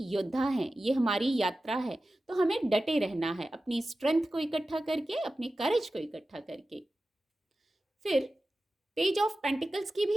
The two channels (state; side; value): normal; both; correlation 0.94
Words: योद्धा हैं, ये हमारी यात्रा है, तो हमें डटे रहना है, अपनी स्ट्रेंथ को इकट्ठा करके, अपने करेज को इकट्ठा करके। फिर पेज ऑफ पेंटिकल्स की